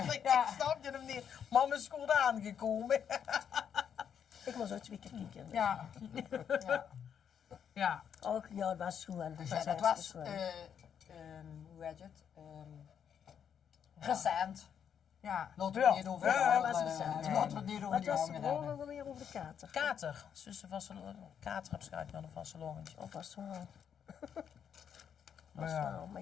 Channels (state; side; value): quieter; right; 8.1 dB